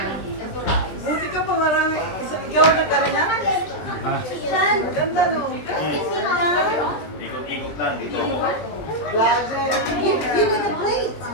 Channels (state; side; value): late; right; 20 ms